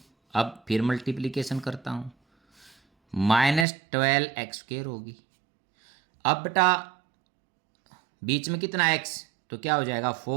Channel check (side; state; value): left; drops out; at 3.7 s